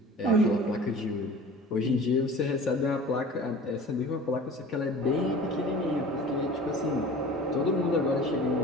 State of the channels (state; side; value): normal; both; correlation 0.41